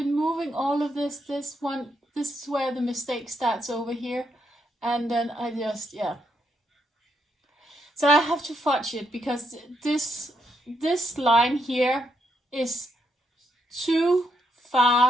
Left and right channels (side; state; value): both; normal; correlation 0.78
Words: moving all of this. This is where the mistake starts over here. And then I just, So I have to fudge it, because this line here is too